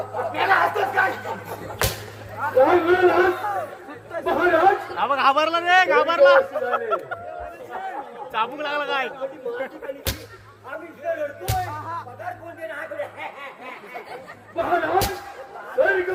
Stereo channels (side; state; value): both; identical; correlation 1.00